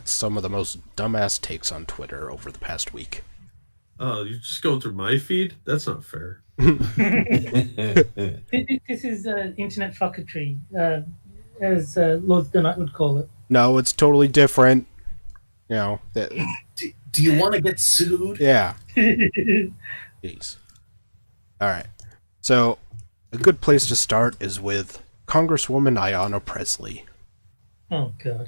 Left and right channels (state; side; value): inverted; both; correlation -1.00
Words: some of the most dumbass takes on Twitter over the past week. Oh, you're just going through my feed? That's not fair. This is internet fucketry, as Lord the Knight would call it. No, it's totally different. Do you want to get sued? Yeah. Jeez. All right. So, a good place to start is with Congresswoman Ayanna Pressley. Oh,